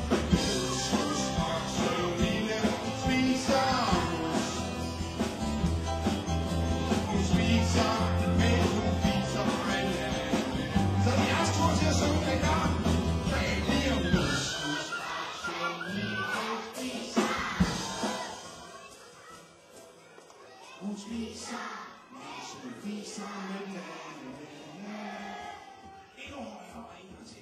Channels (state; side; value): identical; both; correlation 1.00